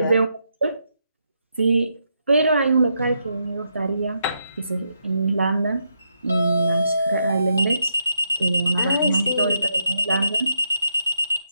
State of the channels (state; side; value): inverted; both; correlation -0.80